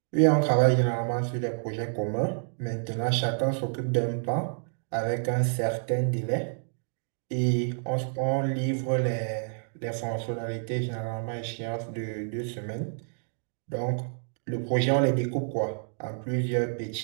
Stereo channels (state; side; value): silent; left; digital silence